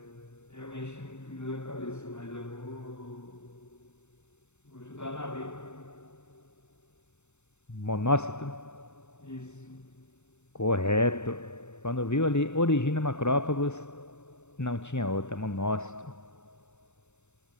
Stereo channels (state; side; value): late; right; 0.82 ms